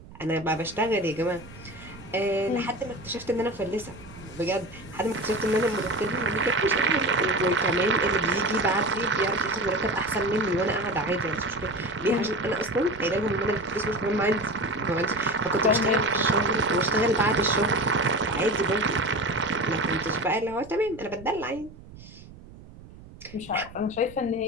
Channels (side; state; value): right; noise; rumble, 19 dB below the sound